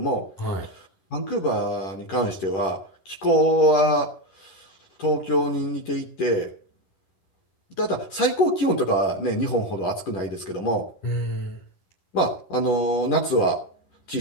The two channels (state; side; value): late; right; 11 ms